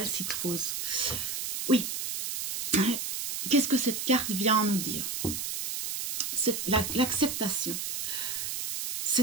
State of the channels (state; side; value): noise; right; hiss, 3 dB below the sound